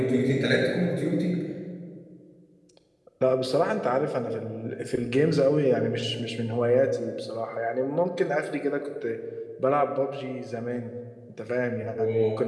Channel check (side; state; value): both; identical; correlation 1.00